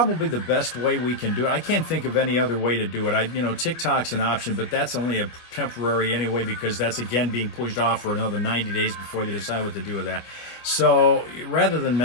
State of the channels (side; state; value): right; late; 25 ms